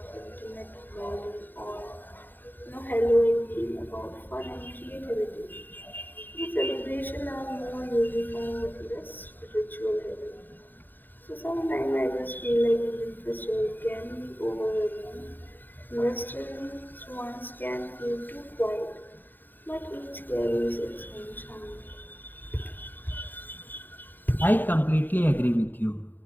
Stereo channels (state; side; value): late; right; 0.090 ms